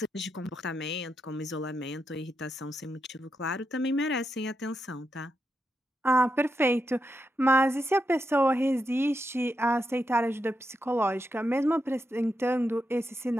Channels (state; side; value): normal; both; correlation 0.85